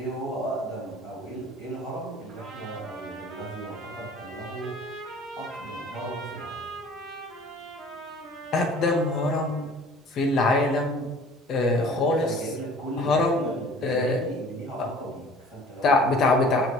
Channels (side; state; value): both; normal; correlation 0.48